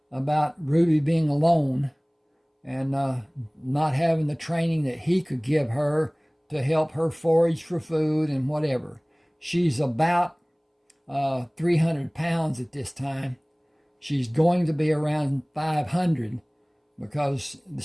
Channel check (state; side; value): identical; both; correlation 1.00